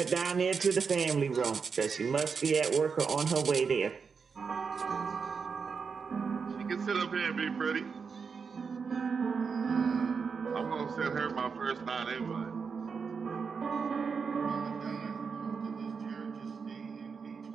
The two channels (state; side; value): quieter; left; 5.6 dB